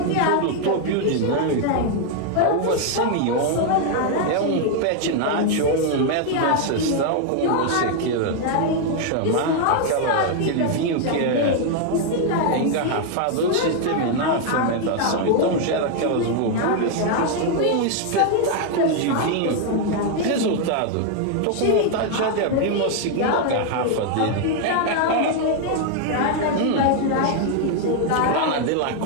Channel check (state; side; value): different; both; correlation 0.00